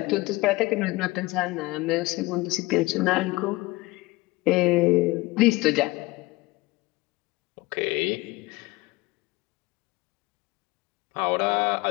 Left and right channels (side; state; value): right; quieter; 21.6 dB